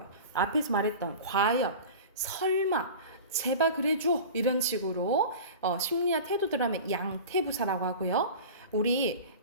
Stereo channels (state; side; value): inverted; both; correlation -0.35